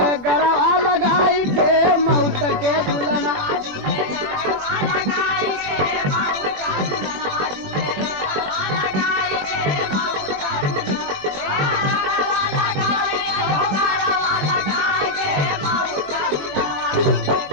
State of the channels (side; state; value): left; late; 21 ms